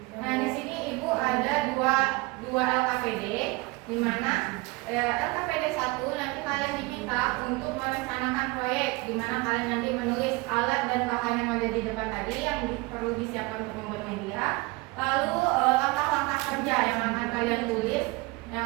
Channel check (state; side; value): quieter; left; 24.0 dB